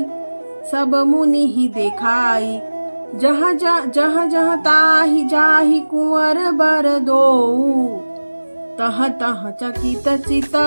सब मुनि ही देखाई। जहाँ जहाँ ताहि जाहि कुंवर बर दो, तह तह चकित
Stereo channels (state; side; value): inverted; both; correlation -1.00